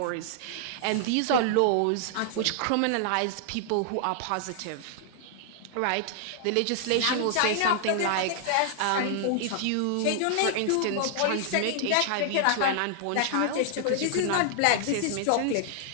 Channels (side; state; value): both; different; correlation -0.01